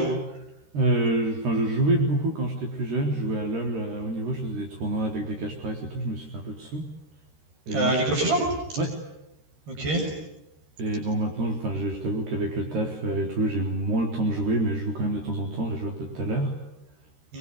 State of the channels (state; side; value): late; left; 13 ms